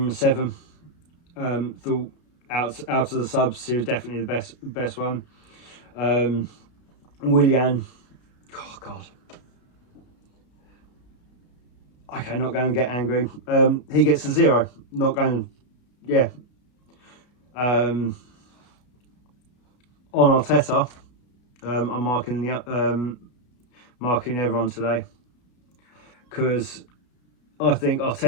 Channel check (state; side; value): late; right; 33 ms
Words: a 7. Thought out of the subs, he was definitely the best one. Willian, oh god. Okay, not going to get angry. He gets a 0. Not going, yeah. On Arteta, I'm marking everyone today, because I think